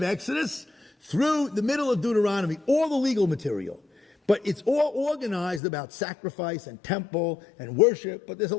Exodus through the middle of Deuteronomy, all the legal material. But it's all organized about sacrifice and temple and worship, but there's a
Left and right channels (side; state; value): right; drops out; at 5.6 s